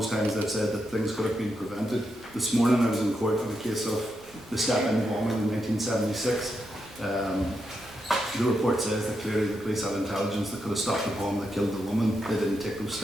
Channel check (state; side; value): normal; both; correlation 0.84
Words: times they've said that things could have been prevented. This morning I was in court on a case of the Step-In bombing in 1976. The report says that clearly the police had intelligence that could have stopped the bomb that killed the woman. They didn't take those